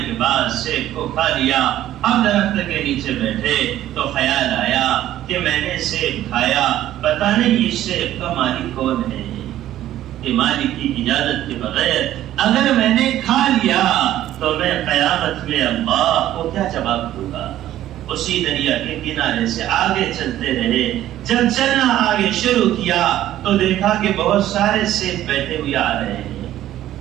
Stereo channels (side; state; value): left; quieter; 13.1 dB